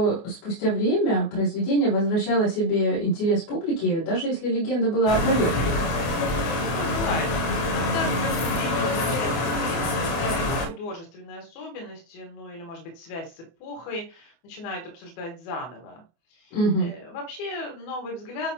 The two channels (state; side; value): late; right; 24 ms